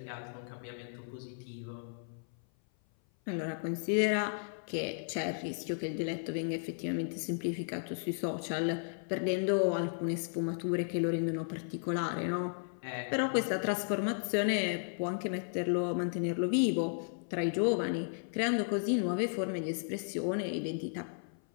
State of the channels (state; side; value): silent; right; 55 dB below the other